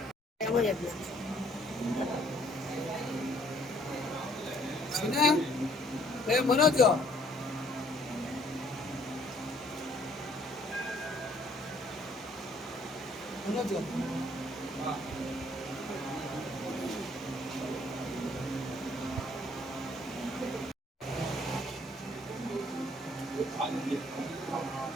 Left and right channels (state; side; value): normal; both; correlation 0.62